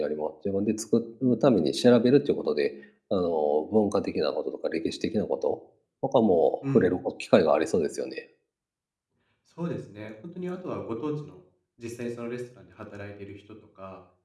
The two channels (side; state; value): both; identical; correlation 1.00